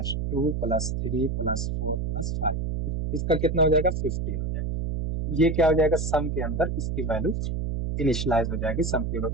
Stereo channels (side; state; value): right; noise; hum, 2 dB below the sound